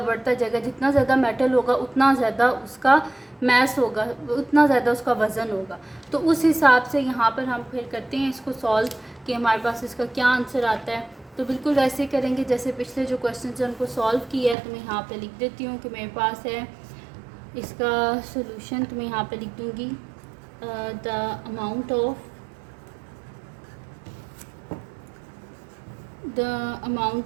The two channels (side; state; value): left; drops out; at 14.6 s